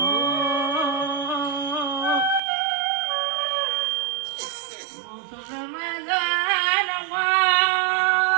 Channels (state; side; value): drops out; left; at 2.4 s